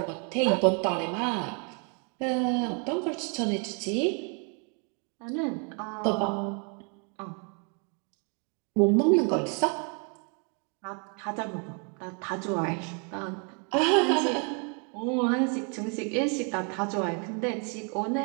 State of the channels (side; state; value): left; quieter; 37.6 dB